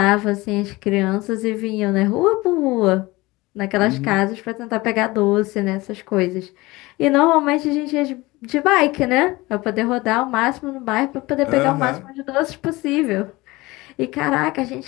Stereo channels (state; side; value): quieter; right; 21.1 dB